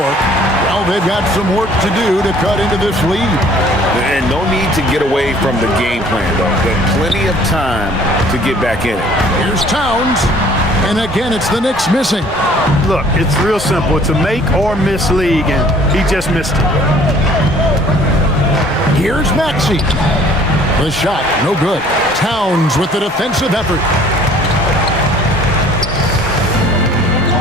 Well, they've got some work to do to cut into this lead. And no need to get away from the game plan, though. Got plenty of time to get back in it. Here's Towns. And again, it's the Knicks missing. Look, it's real simple. It's a make or miss league, and he just missed it. Here's Maxey. The shot, no good. Towns with the defensive effort.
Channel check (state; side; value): normal; both; correlation 0.55